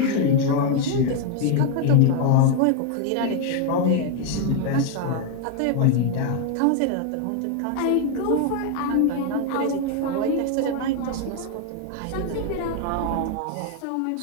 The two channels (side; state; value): both; different; correlation 0.00